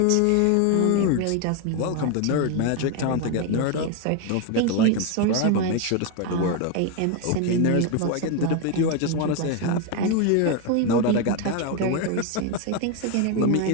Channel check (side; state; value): both; different; correlation 0.02